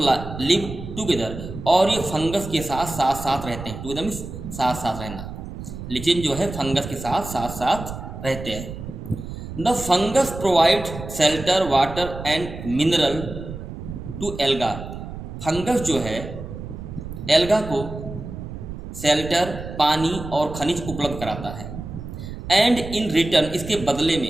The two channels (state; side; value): noise; right; rumble, 10 dB below the sound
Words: लिव टुगेदर, और ये फंगस के साथ रहते हैं। टुगेदर मीन्स साथ रहना। लिचेन जो है फंगस के साथ रहते हैं। The fungus provide shelter, water and mineral to alga. Fungus जो है एल्गा को शेल्टर, पानी और खनिज उपलब्ध कराता है। एंड इन रिटर्न, इसके बदले